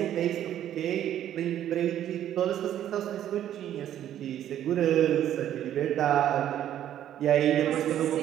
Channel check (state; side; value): quieter; left; 11.2 dB